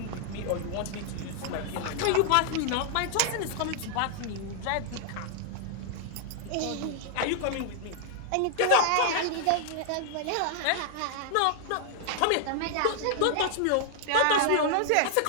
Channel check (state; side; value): different; both; correlation 0.00